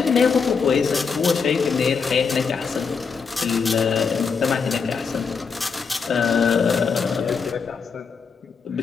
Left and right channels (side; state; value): right; quieter; 5.6 dB